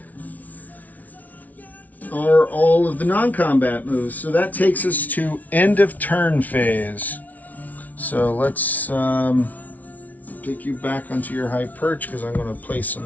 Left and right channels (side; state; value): right; late; 0.074 ms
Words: are all of the non-combat moves. So that takes us to end of turn phase. So let's take you back onto your high perch because I'm going to place